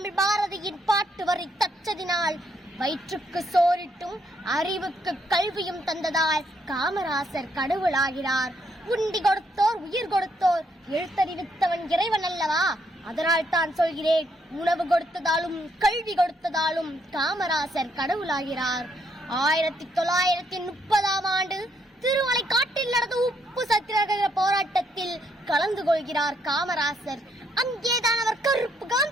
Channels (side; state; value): both; normal; correlation 0.73